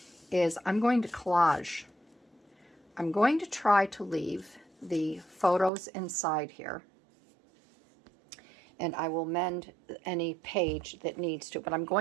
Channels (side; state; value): left; drops out; at 5.7 s